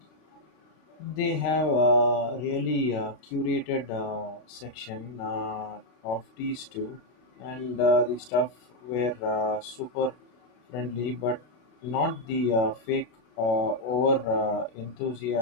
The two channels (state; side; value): late; right; 32 ms